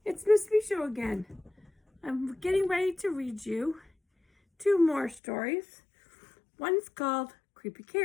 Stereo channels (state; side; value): drops out; right; at 5.2 s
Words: it's Miss Misho again. I'm getting ready to read you two more stories. One's called Creepy